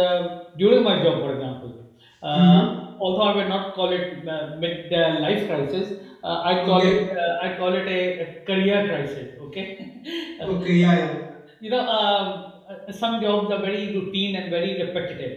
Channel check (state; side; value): identical; both; correlation 1.00